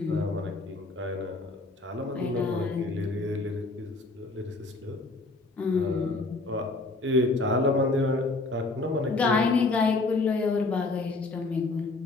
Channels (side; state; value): right; quieter; 3.3 dB